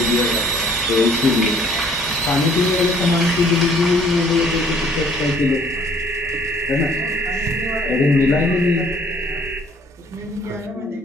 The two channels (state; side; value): normal; both; correlation 0.59